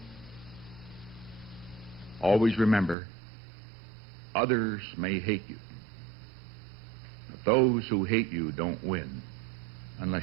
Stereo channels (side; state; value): left; drops out; at 3.0 s